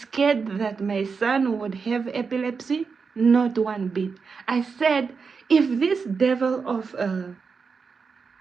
that my son would have epilepsy? Not one bit. I said, if this devil of a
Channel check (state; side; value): quieter; left; 5.3 dB